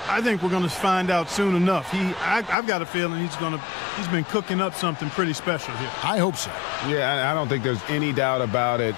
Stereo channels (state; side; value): drops out; right; at 2.6 s